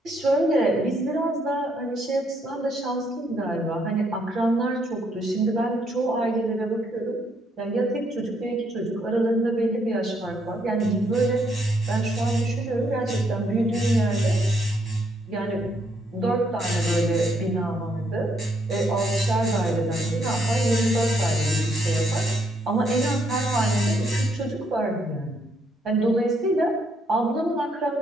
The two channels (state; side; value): normal; both; correlation 0.72